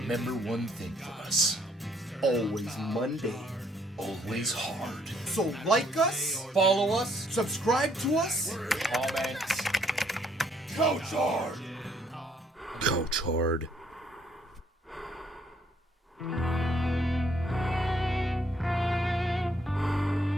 one thing from us. Always Monday. Always hard. So like us, Follow us. subscribe to us, Comment. couchhard. Couchhard.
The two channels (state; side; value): normal; both; correlation 0.68